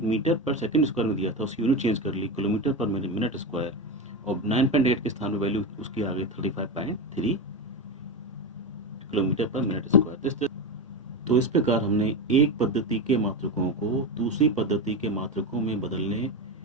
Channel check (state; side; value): normal; both; correlation 0.17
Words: मीटर पर सेकंड स्क्वायर में दिया था उसकी यूनिट चेंज कर ली किलोमीटर पर मिनट स्क्वायर, और 9.8 के स्थान पर वैल्यू उसकी आ गई 35.3 किलोमीटर पर मिनट स्क्वायर। तो इस प्रकार हमने एक पद्धति के मात्रकों को दूसरी पद्धति के मात्रकों में बदलने